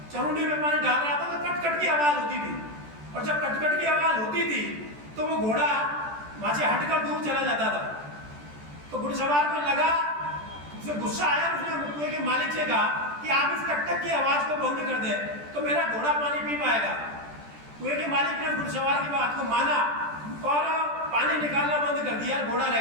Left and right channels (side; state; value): left; late; 14 ms